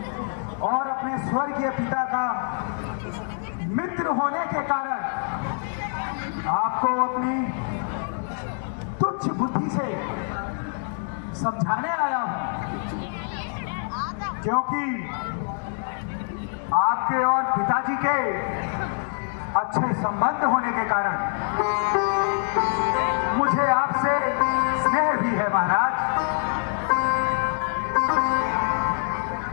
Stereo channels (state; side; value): silent; right; 62 dB below the other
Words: और अपने स्वर्गीय पिता का मित्र होने के कारण आपको अपनी तुच्छ बुद्धि से समझाने आया हूं, क्योंकि आपके और पिताजी के अच्छे संबंध होने के कारण मुझे आपसे स्नेह भी है महाराज।